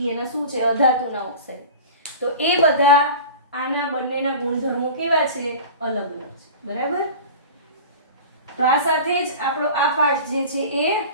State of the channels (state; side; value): inverted; both; correlation -0.35